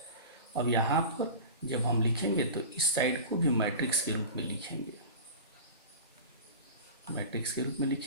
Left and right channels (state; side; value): inverted; both; correlation -0.32